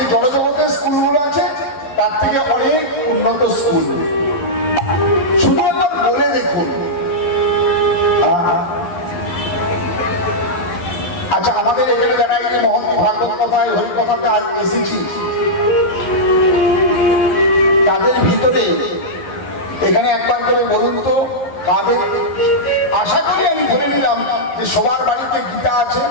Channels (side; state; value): right; late; 11 ms